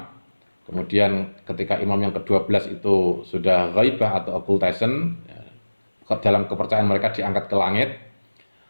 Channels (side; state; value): both; inverted; correlation -1.00